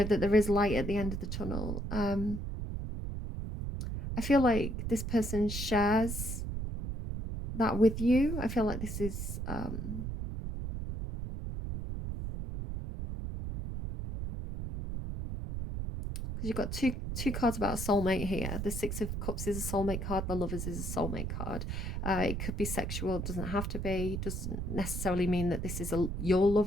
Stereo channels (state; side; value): noise; right; rumble, 4 dB below the sound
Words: that there is light at the end of the tunnel. I feel like this person shares that with you. I feel like this is because you've got two cards about a soulmate here. The Six of Cups is a soulmate card. The Lovers is a soulmate card. It could be sexual. It doesn't have to be. It doesn't necessarily mean that this is your